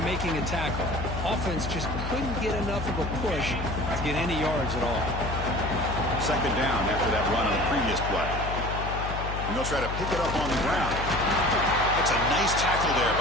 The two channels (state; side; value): noise; left; hum, 5 dB below the sound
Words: making a tackle. Offense just couldn't get enough of a push to get any yards at all. Second down after that run on the previous play. And they'll try to pick it up on the ground. That's a nice tackle there